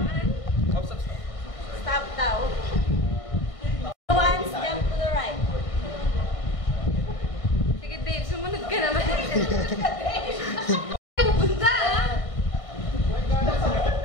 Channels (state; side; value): late; right; 1.6 ms